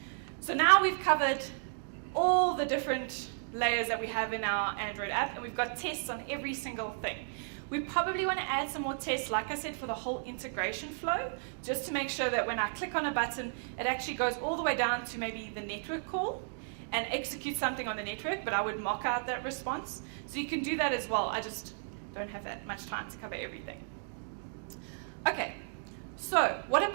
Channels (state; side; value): silent; left; digital silence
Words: So now we've covered all the different layers that we have in our Android app, and we've got tests on every single thing. We probably want to add some more tests, like I said, for the whole integration flow, just to make sure that when I click on a button, it actually goes all the way down to maybe the network call and executes something on the network, but I would mock out that response. So you can do that as well. I just don't have that much time to cover everything. Okay, so what